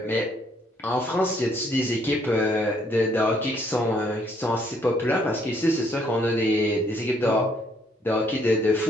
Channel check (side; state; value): both; normal; correlation 0.68